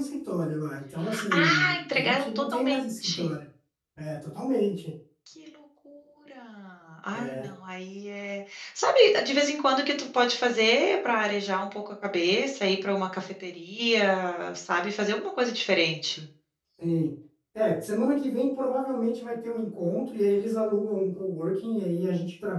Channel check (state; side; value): identical; both; correlation 1.00